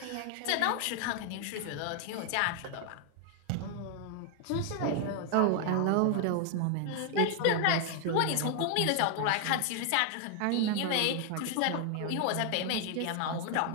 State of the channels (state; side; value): different; both; correlation 0.00